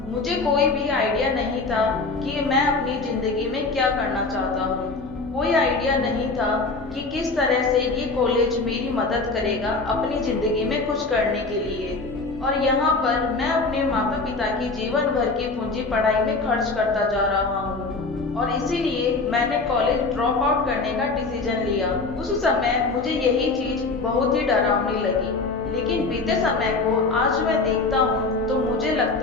मुझे कोई भी आइडिया नहीं था कि मैं अपनी जिंदगी में क्या करना चाहता हूँ। कोई आइडिया नहीं था कि किस तरह से ये कॉलेज मेरी मदद करेगा अपनी जिंदगी में कुछ करने के लिए। और यहाँ पर मैं अपने माता पिता की जीवन भर की पूंजी पढ़ाई में खर्च करता जा रहा हूँ, और इसीलिए मैंने कॉलेज ड्रॉप आउट करने का डिसीजन लिया। उस समय मुझे यही चीज बहुत ही डरावनी लगी, लेकिन बीते समय को आज मैं देखता हूँ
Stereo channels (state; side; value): quieter; right; 3.7 dB